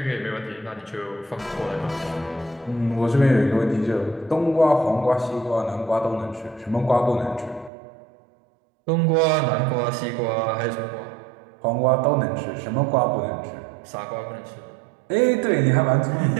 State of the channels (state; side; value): drops out; left; at 7.7 s